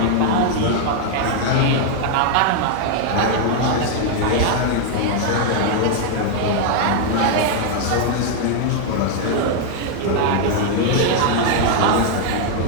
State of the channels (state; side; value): different; both; correlation 0.00